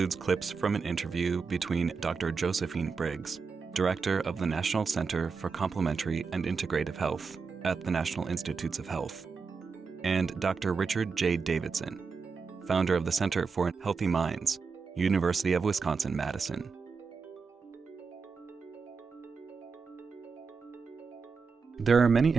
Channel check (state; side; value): quieter; left; 5.1 dB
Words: clips from an interview between Dr. Josephine Briggs, Director of the National Center for Complementary and Integrative Health at the National Institutes of Health, and Dr. Richard J. Davidson, founder of the Center for Healthy Minds, University of Wisconsin-Madison. There are many